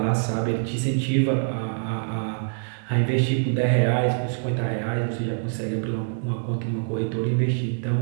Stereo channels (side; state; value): left; silent; digital silence